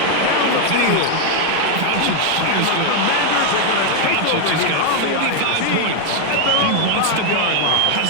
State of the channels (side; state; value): both; different; correlation 0.00